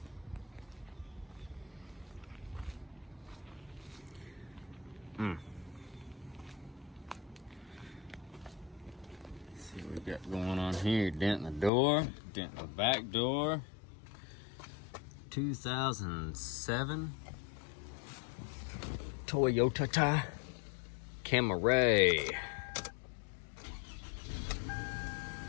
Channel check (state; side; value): drops out; right; at 11.7 s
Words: See what we got going on here. Dent in the door, dent in the back door. 2007 Toyota Camry.